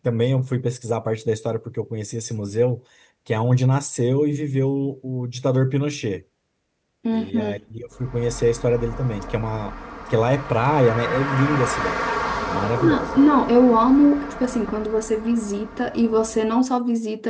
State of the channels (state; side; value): identical; both; correlation 1.00